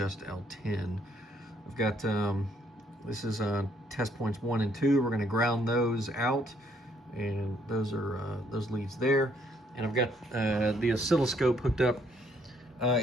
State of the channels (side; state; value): both; normal; correlation 0.68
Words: L10. I've got this is test points 1 and 2. We're going to ground those out, and those are those leads there. And I've got the oscilloscope hooked up.